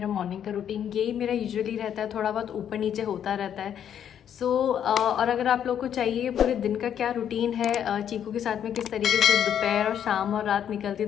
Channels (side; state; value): right; quieter; 9.3 dB